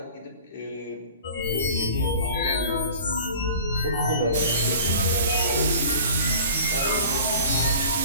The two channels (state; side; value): inverted; both; correlation -0.43